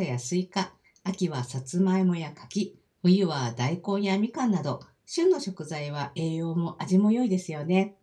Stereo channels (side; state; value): both; identical; correlation 1.00